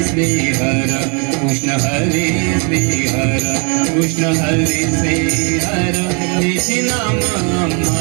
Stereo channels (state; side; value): quieter; left; 36.1 dB